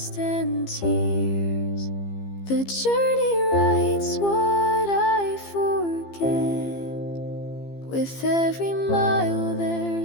and tears. The journey writes what I forget With every mile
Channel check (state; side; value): late; right; 15 ms